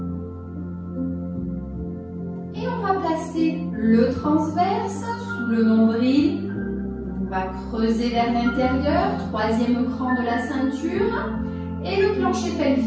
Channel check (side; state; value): both; identical; correlation 1.00